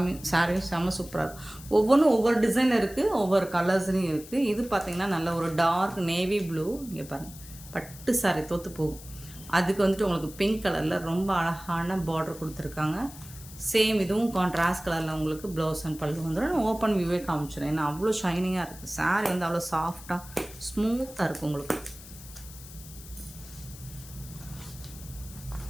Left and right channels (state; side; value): noise; left; hiss, 17 dB below the sound